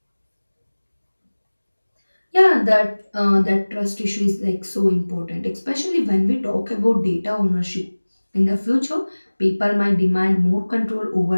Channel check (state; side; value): inverted; both; correlation -1.00